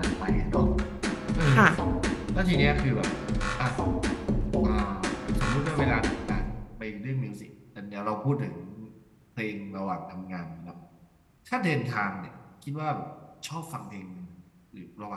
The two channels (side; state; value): both; identical; correlation 1.00